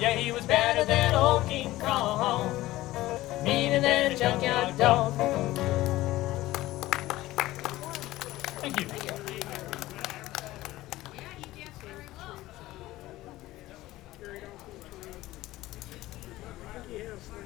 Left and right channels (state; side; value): quieter; right; 16.9 dB